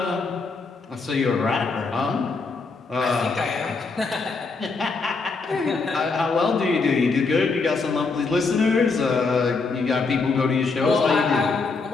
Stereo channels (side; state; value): right; quieter; 4.2 dB